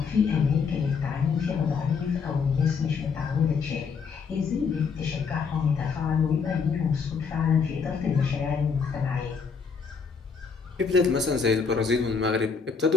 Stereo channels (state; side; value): quieter; right; 5.6 dB